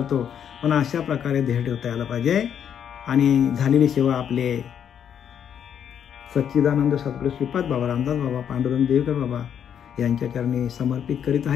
पण अशा प्रकारे देह ठेवता यायला पाहिजे. आणि झालेली सेवा आपले सच्चिदानंद सद्गुरू श्रीपाद बाबा, रामदास बाबा, पांडुरंग देवेकर बाबा यांच्या चरणी समर्पित करीत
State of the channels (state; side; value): quieter; right; 8.7 dB